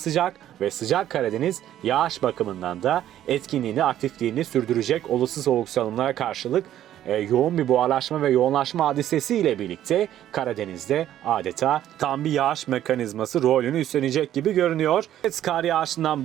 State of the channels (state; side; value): quieter; left; 11.9 dB